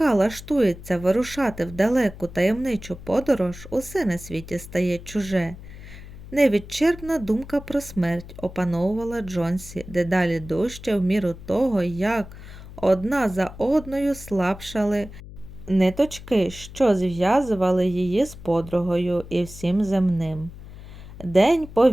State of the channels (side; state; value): left; noise; hum, 15 dB below the sound